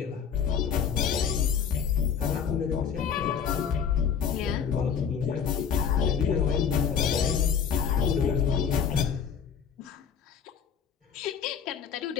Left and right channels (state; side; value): quieter; right; 7.3 dB